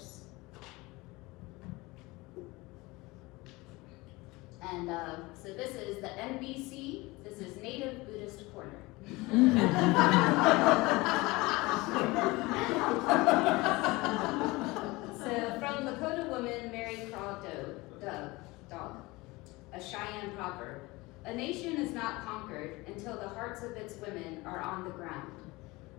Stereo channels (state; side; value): quieter; right; 22.4 dB